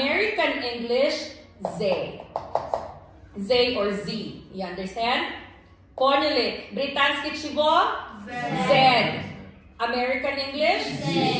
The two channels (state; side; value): identical; both; correlation 1.00